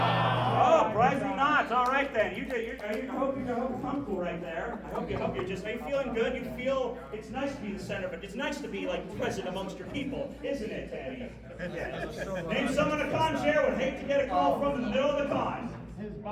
surprisingly not. All right then. I hope you're comfortable right there. I hope you're just. Are you feeling good? You feel it's nice to be the center, but it's nice to be like present amongst your people, isn't it, Tani? Name someone a con chair would hate to get a call from in the middle of the con. His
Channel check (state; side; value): identical; both; correlation 1.00